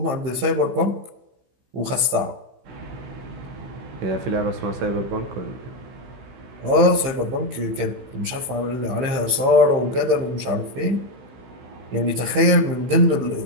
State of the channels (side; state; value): left; late; 16 ms